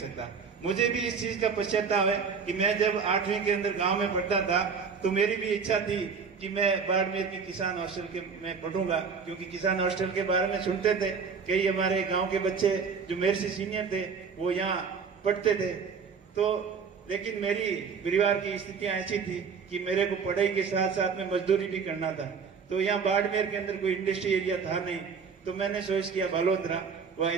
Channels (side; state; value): left; quieter; 5.8 dB